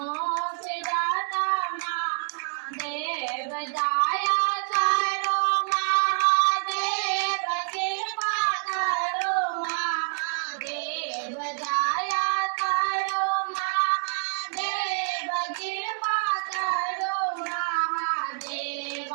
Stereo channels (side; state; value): left; silent; 58 dB below the other